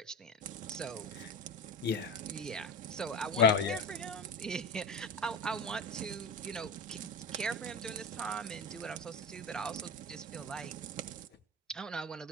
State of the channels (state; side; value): normal; both; correlation 0.25